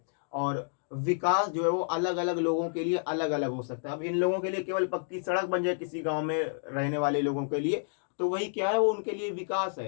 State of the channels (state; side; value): silent; right; digital silence